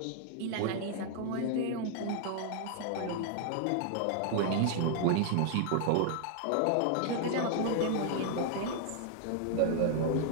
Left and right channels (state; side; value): different; both; correlation 0.00